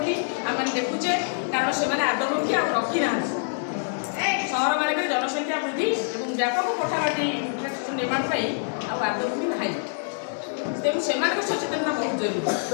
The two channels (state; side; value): silent; right; digital silence